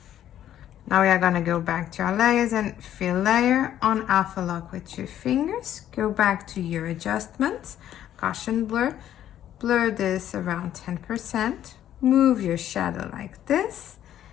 Now we are gonna go back to our layers and fill layer, on alpha lock with 2 fingers, go back to your adjustments, Gaussian blur, blur this around 10%, move your shadow like this,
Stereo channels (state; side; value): quieter; right; 11.3 dB